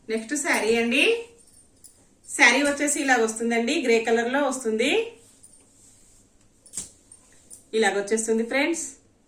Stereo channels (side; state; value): both; identical; correlation 1.00